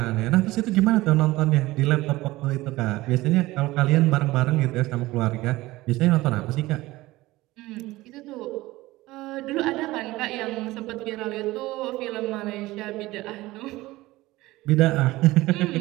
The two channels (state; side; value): quieter; left; 18.8 dB